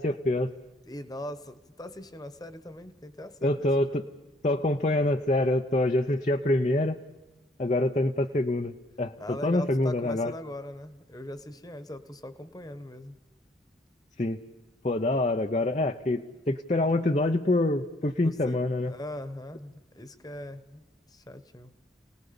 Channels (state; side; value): normal; both; correlation 0.63